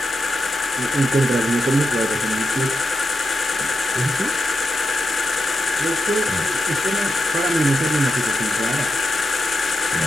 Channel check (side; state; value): both; normal; correlation 0.87